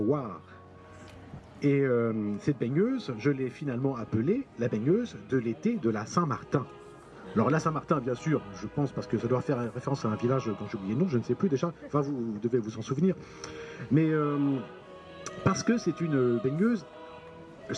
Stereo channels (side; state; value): both; identical; correlation 1.00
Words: Et cette baigneuse, je l'ai finalement appelée la baigneuse de l'été de la Saint-Martin. Alors la Saint-Martin, bien sûr, je pense, parce que ça doit faire référence à un village dont j'ai oublié le nom, je ne sais plus déjà, enfin vous devez vous en souvenir. Mais parce que c'est une baigneuse,